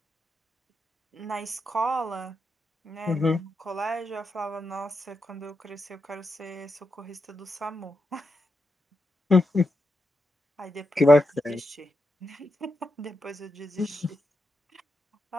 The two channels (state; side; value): normal; both; correlation 0.86